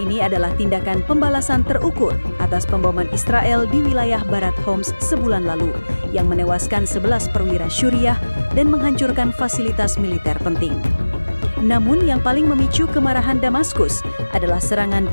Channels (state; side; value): inverted; both; correlation -1.00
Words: adalah tindakan pembalasan terukur atas pemboman Israel di wilayah barat Homs sebulan lalu, yang menewaskan 11 perwira Syuriah dan menghancurkan fasilitas militer penting. Namun yang paling memicu kemarahan Damaskus adalah serangan